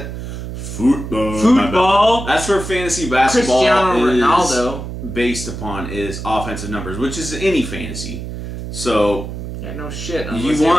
That's where fantasy basketball is based upon, is offensive numbers, which is any fantasy. So yeah, no shit. You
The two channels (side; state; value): right; noise; hum, 8 dB below the sound